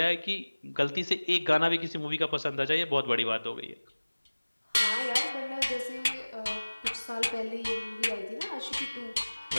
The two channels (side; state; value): both; inverted; correlation -1.00